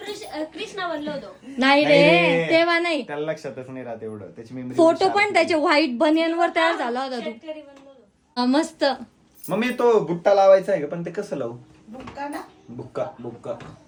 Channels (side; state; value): both; identical; correlation 1.00